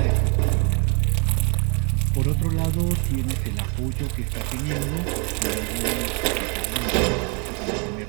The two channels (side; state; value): left; quieter; 34.5 dB